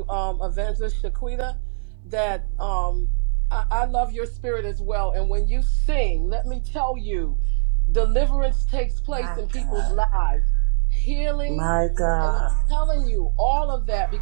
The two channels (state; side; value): silent; left; digital silence